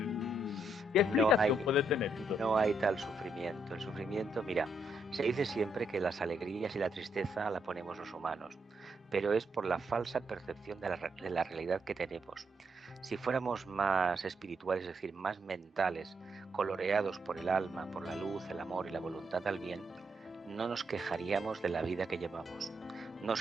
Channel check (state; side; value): normal; both; correlation 0.77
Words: ¿Qué explicación puede tener? No hay tal sufrimiento. El sufrimiento, mira, se dice siempre que las alegrías y la tristeza la ponemos los humanos, pero es por la falsa percepción de la realidad que tenemos. Si fuéramos más espirituales, es decir, más mentales, coloreados por el alma, por la luz, el amor y la voluntad al bien, no nos quejaríamos de la vida que llevamos. Nos